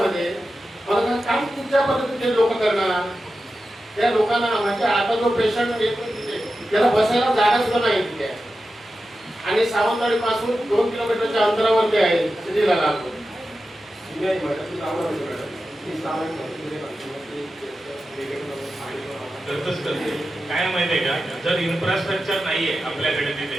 मला काम कुठच्या पद्धतीने लोक करणार, त्या लोकांना म्हणजे आता जो पेशंट येतो तिथे त्याला बसायला जागा सुद्धा नाही तिथे, आणि सावंतवाडी पासून 2 किलोमीटरच्या अंतरावरती आहे सिटीला लागतो। काय माहितीये का, जर इन्फ्रास्ट्रक्चर नाहीये आपल्याकडे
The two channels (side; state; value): both; normal; correlation 0.92